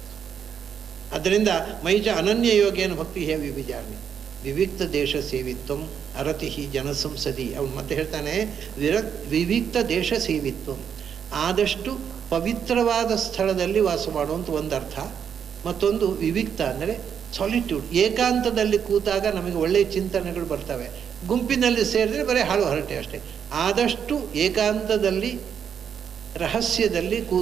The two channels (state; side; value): quieter; left; 7.9 dB